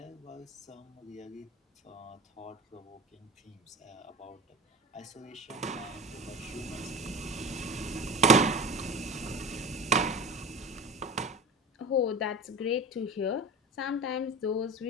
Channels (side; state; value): both; normal; correlation 0.31